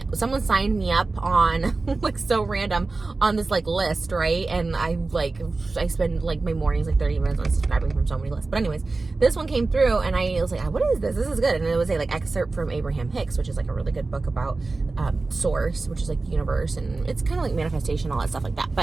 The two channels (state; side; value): quieter; left; 3.6 dB